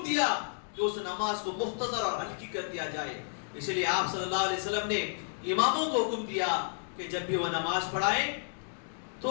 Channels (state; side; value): silent; right; digital silence